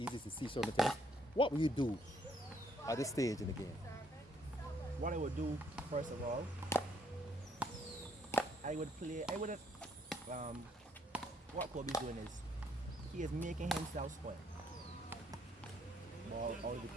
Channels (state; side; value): normal; both; correlation 0.69